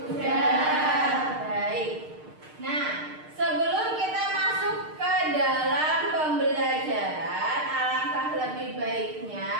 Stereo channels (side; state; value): left; late; 6.6 ms